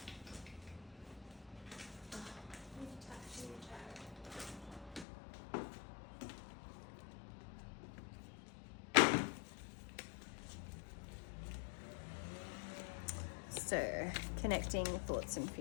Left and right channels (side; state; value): right; drops out; at 5.1 s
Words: so, connecting thoughts and